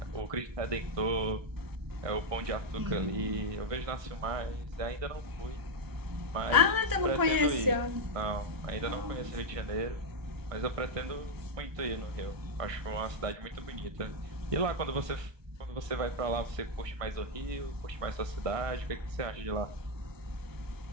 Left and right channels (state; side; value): late; left; 1.2 ms